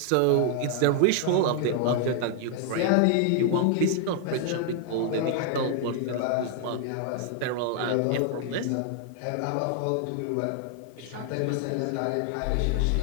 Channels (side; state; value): both; different; correlation 0.00